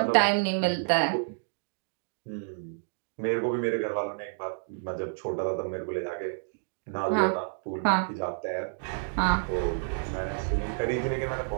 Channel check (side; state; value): left; silent; digital silence